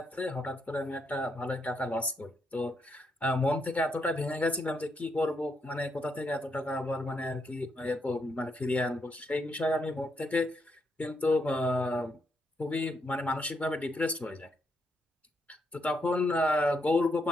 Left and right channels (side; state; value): both; normal; correlation 0.79